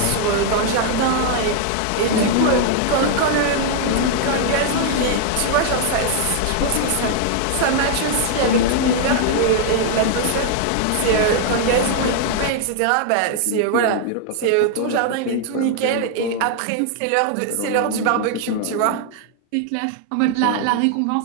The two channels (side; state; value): both; different; correlation 0.00